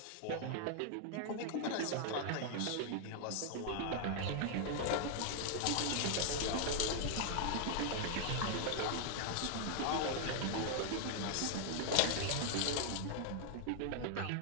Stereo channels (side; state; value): both; different; correlation 0.00